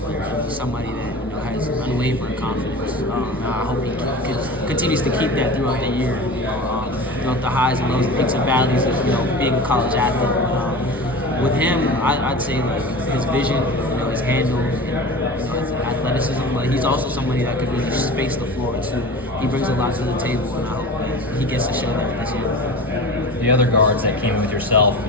He's somebody that, has unwavering confidence. I hope he continues to keep that throughout the year. The highs and lows, the peaks and valleys of, being a college athlete. With him, I'd say, his vision, his handle, his athleticism, but he's also somebody that could really space the floor too. He brings a lot to the table, and I hope that he gets to show that this year. The other guards that came in with yourself,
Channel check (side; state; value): both; normal; correlation 0.34